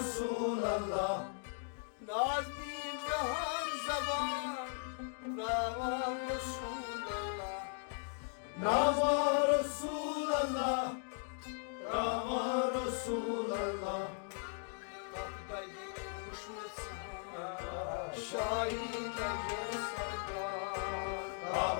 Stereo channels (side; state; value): right; silent; 53 dB below the other